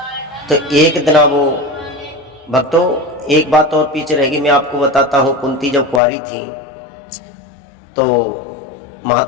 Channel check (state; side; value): drops out; right; at 6.0 s